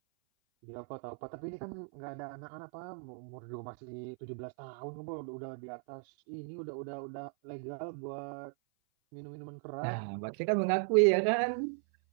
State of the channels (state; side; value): silent; left; 53 dB below the other